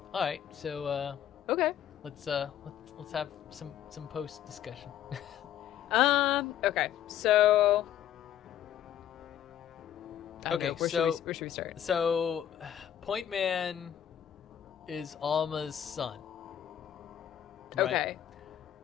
All right, so Okay. let's have some post discussion. Okay. So. I don't Okay, know, where should we start? So, Point Man is Alma's son. Right? Okay.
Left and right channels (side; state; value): right; quieter; 10.6 dB